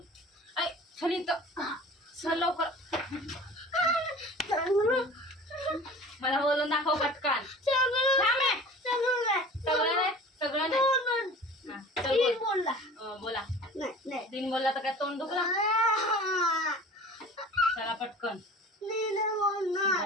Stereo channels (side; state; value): both; normal; correlation 0.41